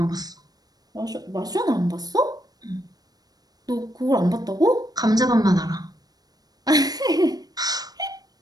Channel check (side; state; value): left; late; 0.19 ms